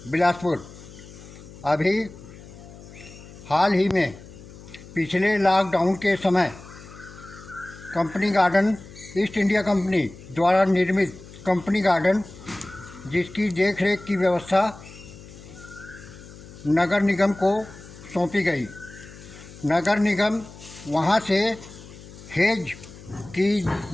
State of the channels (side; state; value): left; noise; hum, 18 dB below the sound